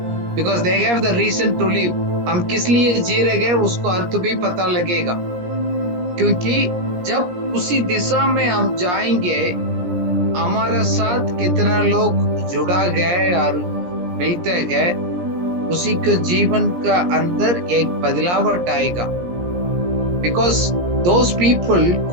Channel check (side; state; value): left; late; 17 ms